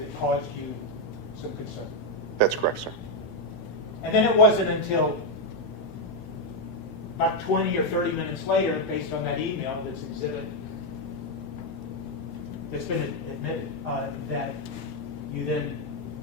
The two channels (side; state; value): both; normal; correlation 0.03